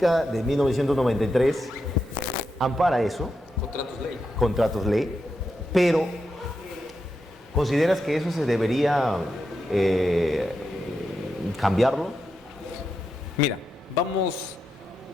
de 1993 ampara eso. Contratos ley. Pero, ¿consideras que eso se debería cambiarlo? Mira, vamos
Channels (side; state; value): both; normal; correlation 0.86